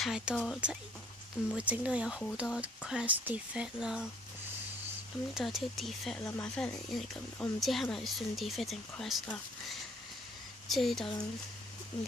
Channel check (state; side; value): normal; both; correlation 0.59